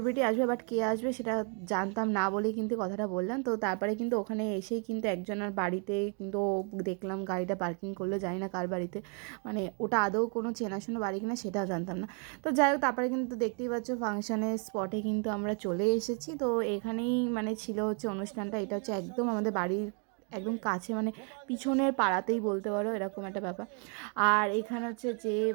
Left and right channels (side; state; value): left; quieter; 39.1 dB